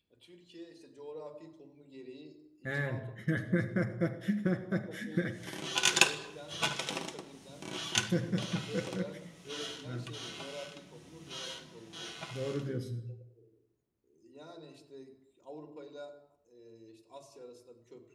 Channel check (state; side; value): identical; both; correlation 1.00